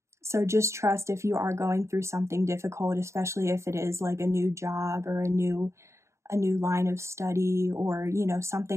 So just trust if you are going through something difficult, especially if it is like a new job or a new line of study, or, you know,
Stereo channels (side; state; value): left; late; 0.14 ms